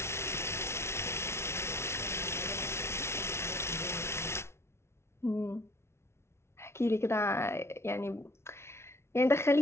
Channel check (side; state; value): right; late; 0.13 ms